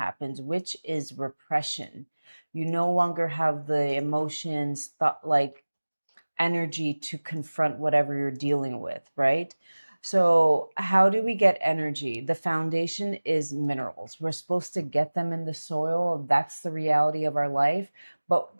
which is repression. You no longer have the emotions, thought like energy to confront whatever you're dealing with, right? So, how do we get energy? The foundation is minerals. We're supposed to get them in the soil. That's the reality of our life, but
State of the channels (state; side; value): inverted; both; correlation -1.00